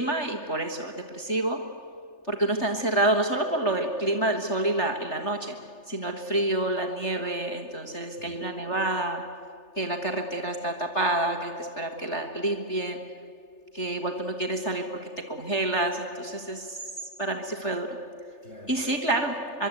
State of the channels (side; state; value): right; late; 3.3 ms